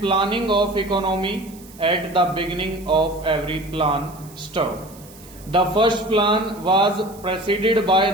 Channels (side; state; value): right; noise; hiss, 22 dB below the sound